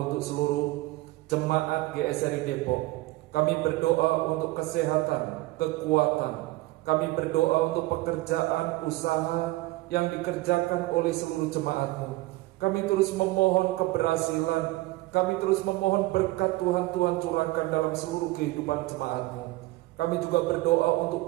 seluruh jemaat GSRI Depok. Kami berdoa untuk kesehatan, kekuatan. Kami berdoa untuk pekerjaan, usaha yang dikerjakan oleh seluruh jemaat-Mu. Kami terus memohon keberhasilan. Kami terus memohon berkat Tuhan curahkan dalam seluruh kehidupan jemaat-Mu. Kami juga berdoa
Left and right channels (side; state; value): left; quieter; 19.5 dB